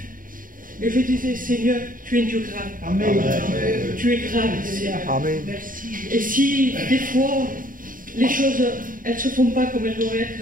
Et je disais, Seigneur, tu es Dieu grand. Amen. Tu es grand, Seigneur. Amen. Et si des fois, les choses, elles ne se font pas comme elles doivent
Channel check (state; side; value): late; left; 0.40 ms